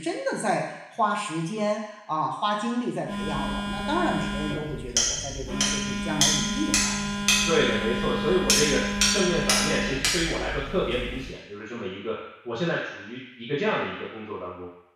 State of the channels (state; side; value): identical; both; correlation 1.00